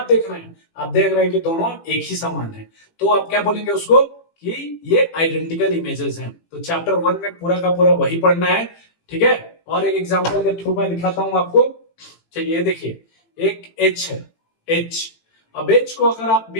देख रहे हैं? आप देख रहे हैं कि दोनों एक ही समान है। तो आप क्या बोलेंगे उसको कि ये आइडेंटिकल इमेजेस हैं। तो चैप्टर 1 में पूरा का पूरा वही पढ़ना है। ठीक है। और एक एग्जांपल के थ्रू मैं दिखाता हूं आपको। चलिए देखिए, एक एच है, एच। अब एच को अगर आप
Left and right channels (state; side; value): late; right; 18 ms